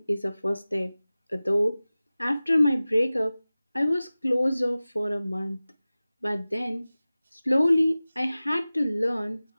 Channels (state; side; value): inverted; both; correlation -0.97